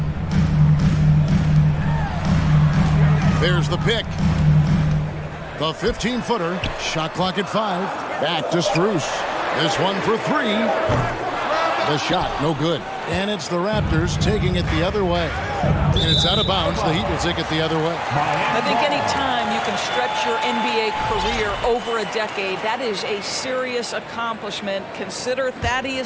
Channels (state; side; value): identical; both; correlation 1.00